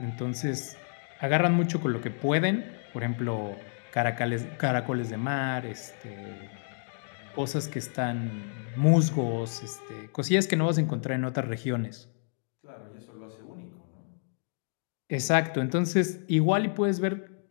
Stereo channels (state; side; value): silent; right; digital silence